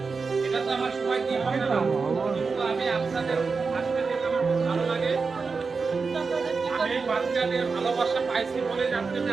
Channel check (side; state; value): left; quieter; 4.7 dB